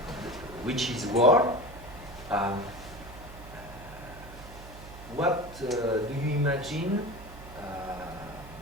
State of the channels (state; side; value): noise; right; hum, 15 dB below the sound